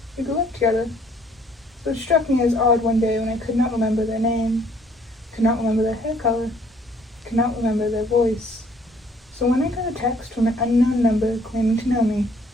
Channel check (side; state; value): both; normal; correlation 0.61